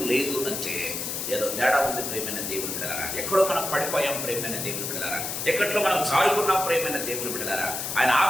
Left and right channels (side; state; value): left; noise; hiss, 4 dB below the sound